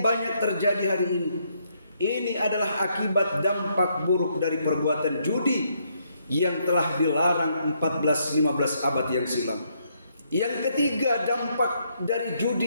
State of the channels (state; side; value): inverted; both; correlation -0.74